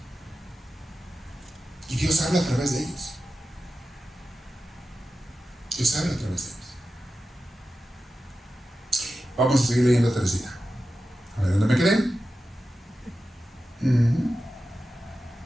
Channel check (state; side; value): normal; both; correlation 0.93